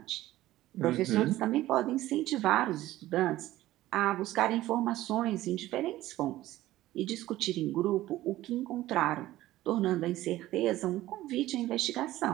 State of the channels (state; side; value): quieter; left; 15.6 dB